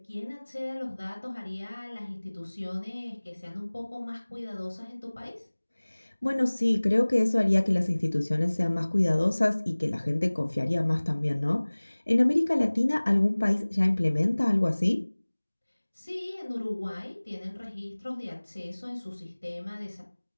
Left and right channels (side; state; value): both; inverted; correlation -1.00